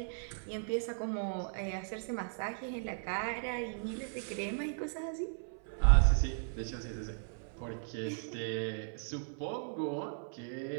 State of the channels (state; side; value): silent; left; 54 dB below the other